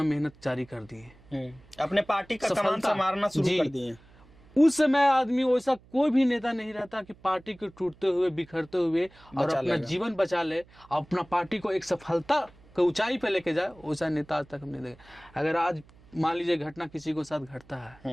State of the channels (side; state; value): right; noise; hum, 26 dB below the sound